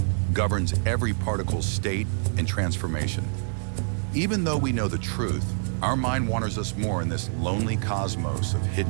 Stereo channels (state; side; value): silent; left; digital silence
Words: governs every particle's state and transformation. Even though we know the truth, our mind wanders us more in this lonely cosmos of